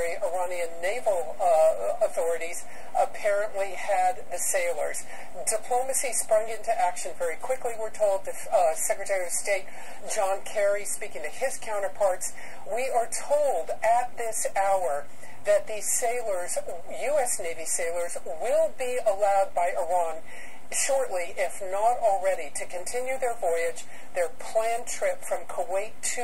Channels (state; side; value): identical; both; correlation 1.00